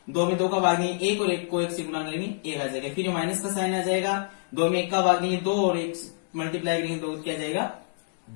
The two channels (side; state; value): right; silent; digital silence